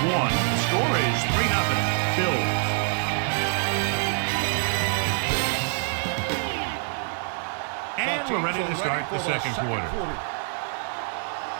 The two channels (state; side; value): silent; left; 61 dB below the other